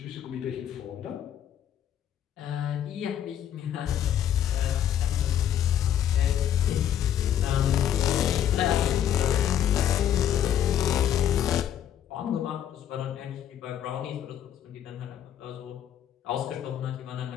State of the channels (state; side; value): quieter; right; 10.2 dB